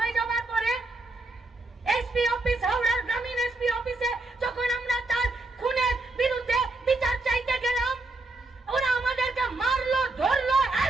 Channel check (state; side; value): quieter; left; 3.0 dB